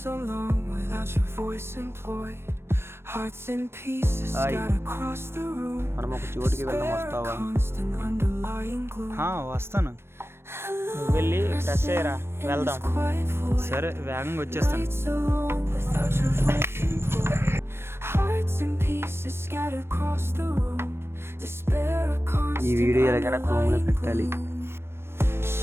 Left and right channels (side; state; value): left; late; 0.12 ms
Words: so long without your voice employed, hearts in pieces scattered across the room. మనం ఒక చోటికి వెళ్దాం, వస్తావా? వస్తాను. నువ్వు వెళ్ళి ఫ్రెష్ అయ్యరా, వెళ్దాం. సరే, వేగంగా వచ్చేస్తాను. ఈ వీడియో ఎలాగైనా క్రోమ్లో పెట్టాలి.